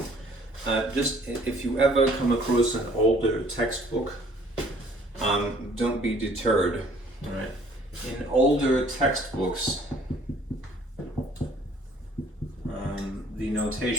Just if you ever come across an older textbook, don't be deterred. All right. In older textbooks, the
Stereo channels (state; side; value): normal; both; correlation 0.57